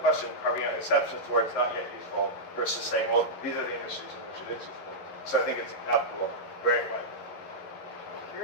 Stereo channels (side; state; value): right; late; 11 ms